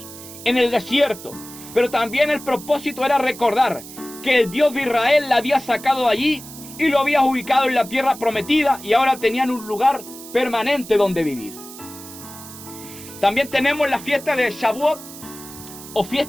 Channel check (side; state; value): right; noise; hiss, 15 dB below the sound